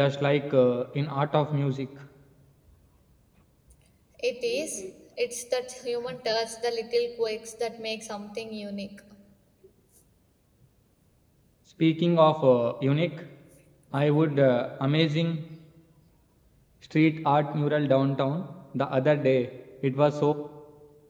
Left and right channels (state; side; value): identical; both; correlation 1.00